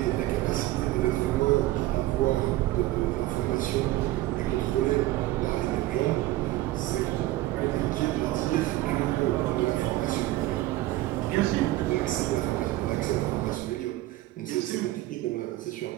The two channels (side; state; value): left; quieter; 16.8 dB